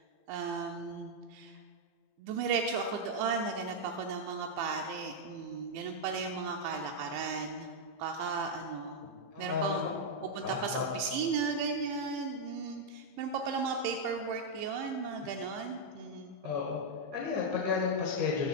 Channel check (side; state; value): left; late; 15 ms